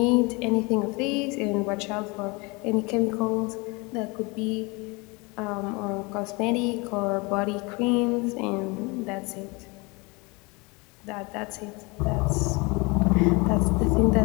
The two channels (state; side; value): quieter; right; 27.3 dB